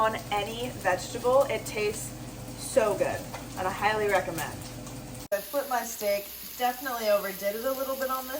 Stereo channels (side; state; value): both; identical; correlation 1.00